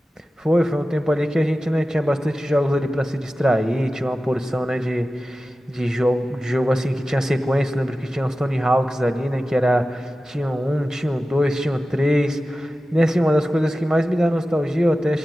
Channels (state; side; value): normal; both; correlation 0.95